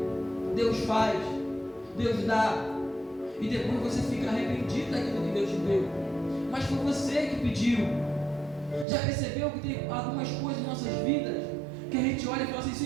Deus faz, Deus dá, e depois você fica arrependido daquilo que Deus te deu. Mas foi você que pediu. Já percebeu que tem algumas coisas em nossas vidas que a gente olha e fala assim,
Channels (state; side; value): drops out; left; at 8.8 s